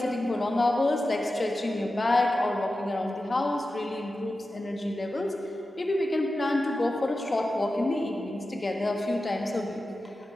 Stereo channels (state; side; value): normal; both; correlation 0.93